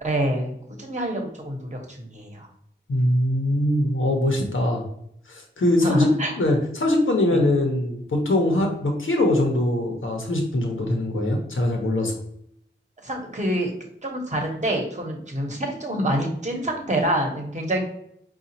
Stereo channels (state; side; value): normal; both; correlation 0.63